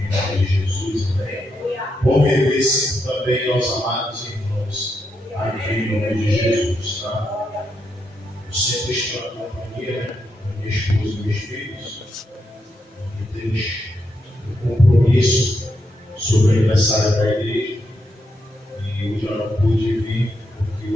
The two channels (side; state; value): both; normal; correlation 0.82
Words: nome de Jesus, amém. Bom rever sempre também aos amados irmãos aqui em nome de Jesus, tá? Eu sempre estou na companhia, né? Da minha esposa e meus filhos. E temos um compromisso sobre o aniversário da igreja. E hoje eu não pude vir, porque